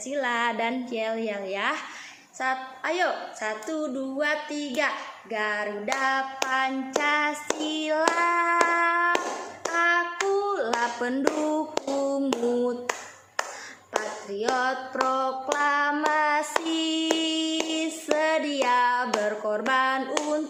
dan yel-yel ya. Ayo, 1, 2, 3. Garuda Pancasila, akulah pendukungmu, patriot proklamasi, sedia berkorban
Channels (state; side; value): identical; both; correlation 1.00